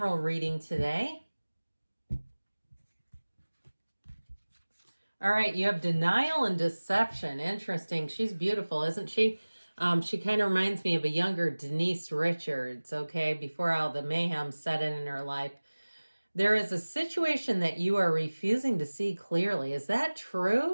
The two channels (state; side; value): inverted; both; correlation -1.00